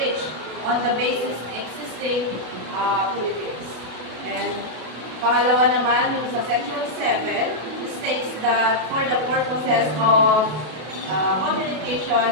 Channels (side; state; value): left; late; 32 ms